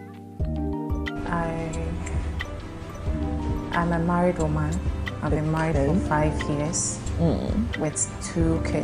I'm a married woman. I've been married for 5 years with 2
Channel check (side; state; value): both; identical; correlation 1.00